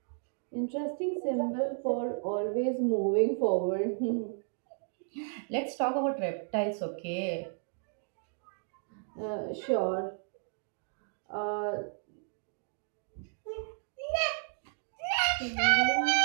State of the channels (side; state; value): left; silent; digital silence